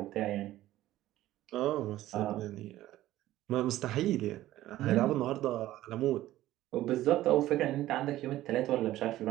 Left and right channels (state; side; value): quieter; left; 14.8 dB